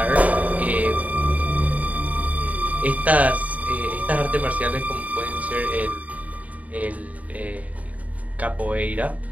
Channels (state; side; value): late; left; 0.071 ms